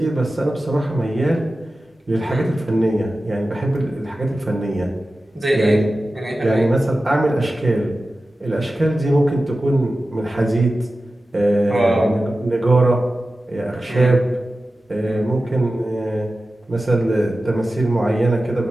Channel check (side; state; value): both; normal; correlation 0.94